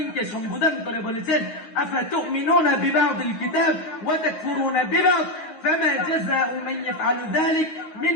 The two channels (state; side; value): late; right; 9.5 ms